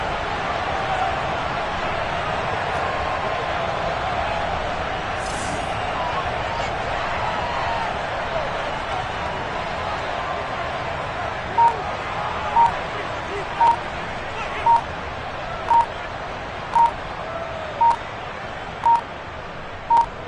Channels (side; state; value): both; identical; correlation 1.00